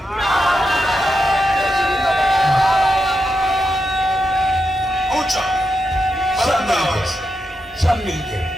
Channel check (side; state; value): both; normal; correlation 0.86